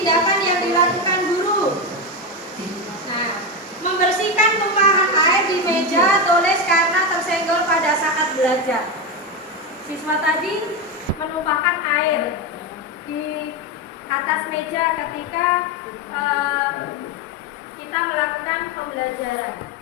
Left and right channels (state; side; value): normal; both; correlation 0.13